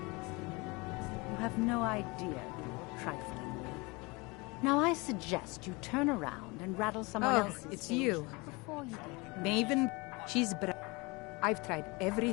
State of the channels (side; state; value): right; quieter; 26.2 dB